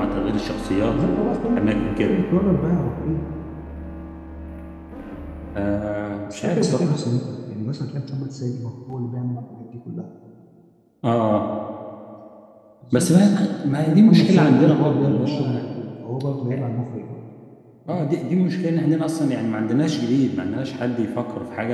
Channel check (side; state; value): both; identical; correlation 1.00